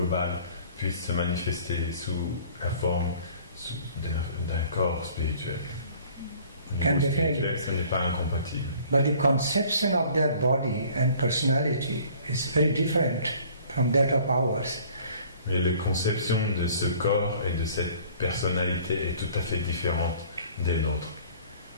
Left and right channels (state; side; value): inverted; both; correlation -0.52